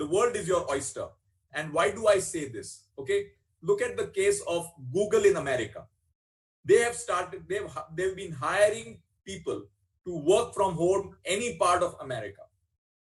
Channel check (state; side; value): identical; both; correlation 1.00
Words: world is your oyster. And why do I say this? Okay, look at the case of Google in America. They have started, they've been hiring people to work from home any part of America.